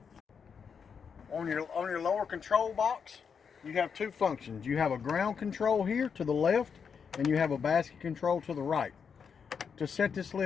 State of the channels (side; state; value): right; quieter; 6.5 dB